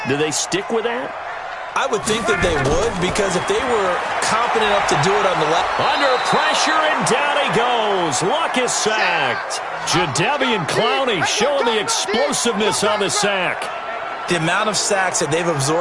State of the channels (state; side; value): identical; both; correlation 1.00